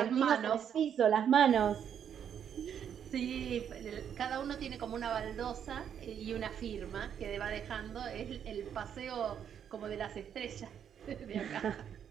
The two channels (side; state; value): left; quieter; 8.6 dB